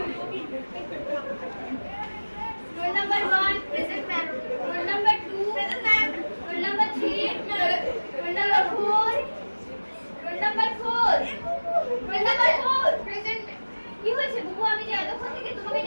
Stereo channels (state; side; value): inverted; both; correlation -1.00